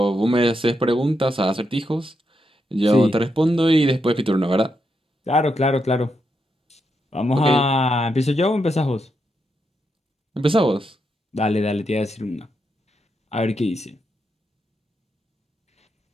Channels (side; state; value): both; normal; correlation 0.83